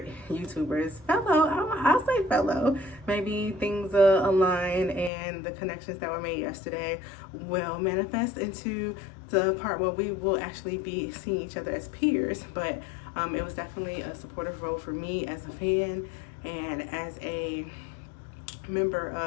I'll say fellow. Maybe things align and the connections that were made yesterday will manifest into the part where we will actually be seeing each other as peers. But it was definitely a supportive role for me as a fan and as a member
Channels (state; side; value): drops out; right; at 5.1 s